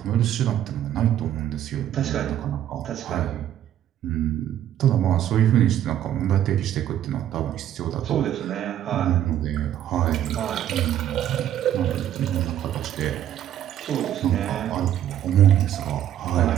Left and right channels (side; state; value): left; quieter; 11.3 dB